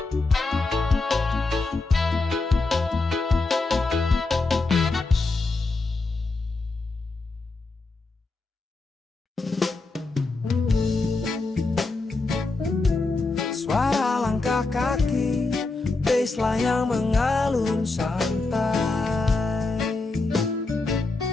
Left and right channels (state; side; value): quieter; right; 3.5 dB